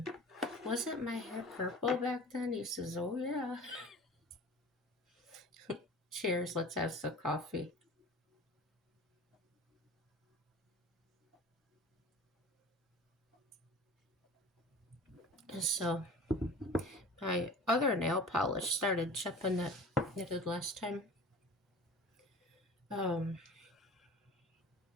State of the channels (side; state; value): both; normal; correlation 0.40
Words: wasn't my hair purple back then? He says, oh yeah. Cheers, let's have some coffee. And so my other nail polish started chipping that I did last time.